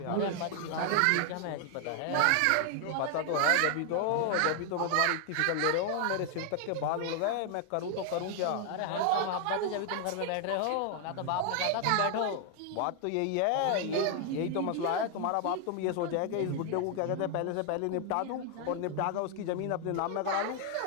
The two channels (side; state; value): both; different; correlation 0.00